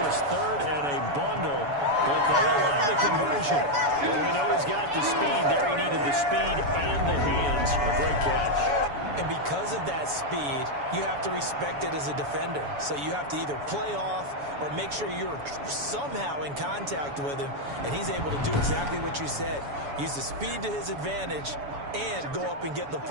was 3rd and a bundle, but they allow the conversion. Well, we know he's got the speed there. He needed the speed and the hands. A great catch. And because of that speed, you have to respect it as a defender. So you have to either play off or make sure you're somehow in contact with him. And he's able to do exactly what you said. Use the speed to his advantage and go up and get the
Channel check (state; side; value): late; left; 7.0 ms